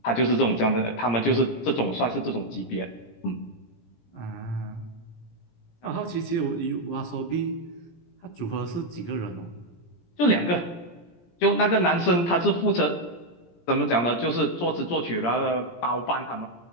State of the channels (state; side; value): late; right; 17 ms